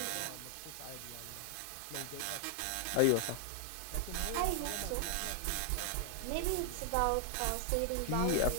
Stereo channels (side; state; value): both; different; correlation 0.00